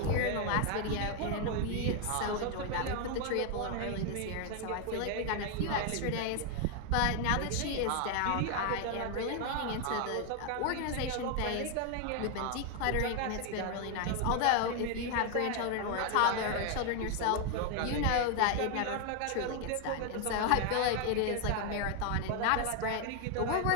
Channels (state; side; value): different; both; correlation 0.01